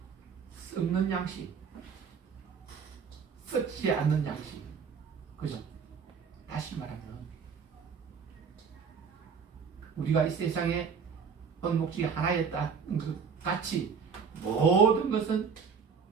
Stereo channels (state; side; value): quieter; left; 6.2 dB